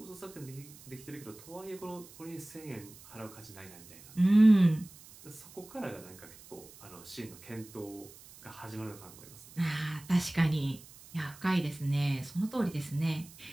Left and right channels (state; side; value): noise; right; hiss, 20 dB below the sound